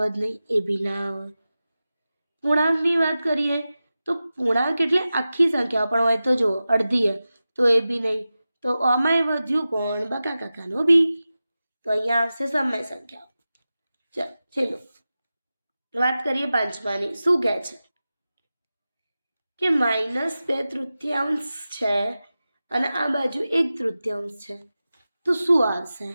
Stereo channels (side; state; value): both; inverted; correlation -0.94